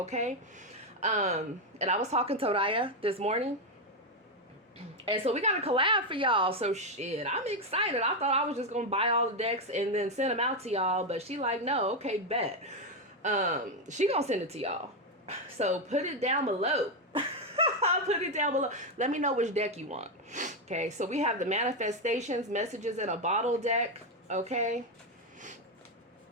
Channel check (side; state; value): both; normal; correlation 0.06